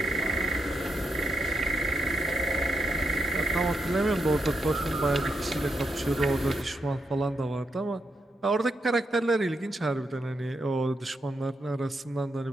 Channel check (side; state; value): both; normal; correlation 0.82